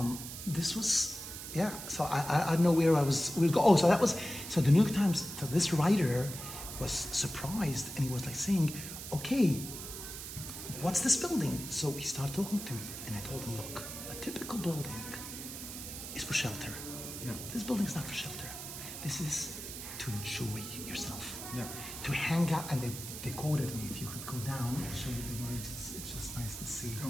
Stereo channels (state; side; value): noise; right; hiss, 9 dB below the sound